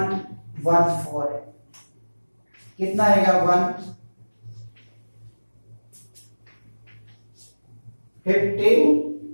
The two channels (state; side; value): inverted; both; correlation -1.00